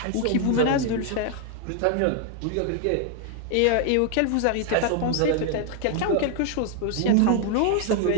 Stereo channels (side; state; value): both; different; correlation 0.00